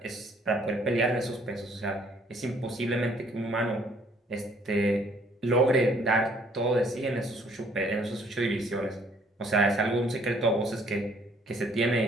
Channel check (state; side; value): normal; both; correlation 0.62